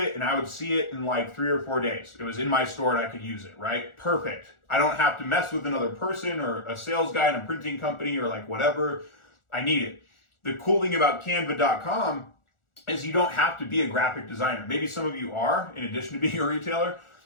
and I would see it in like 3 or 4 days. It was in my store and I could use it, right? Perfect. I don't have to mess with another person or a sales guy in a printing company or like whatever. I need it. The cool thing about Canva.com is you don't have to be a graphic designer. Maybe some of you are, in addition to being a retailer,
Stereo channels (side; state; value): right; late; 1.4 ms